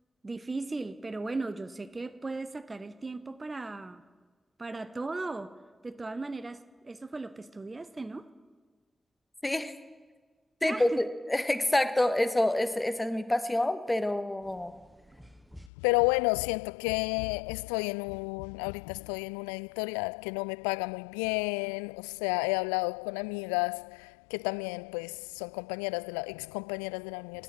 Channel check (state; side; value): drops out; right; at 15.7 s